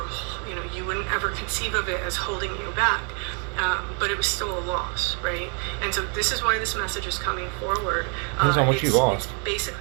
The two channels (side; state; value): left; quieter; 38.6 dB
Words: you wouldn't ever conceive of it as holding you back. But it was still a loss, right? And so this is why this message is coming forward. Depends on what you lost. It's